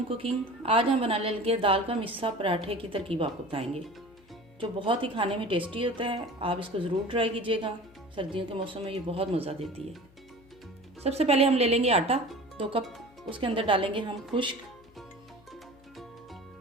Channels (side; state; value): left; noise; hum, 28 dB below the sound